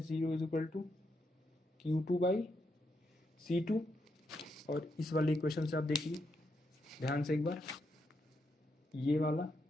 0 is equal to Q2 by C2। और इस वाले इक्वेशन से आप देखिए ध्यान से एक बार, ये वाला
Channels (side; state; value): both; normal; correlation 0.81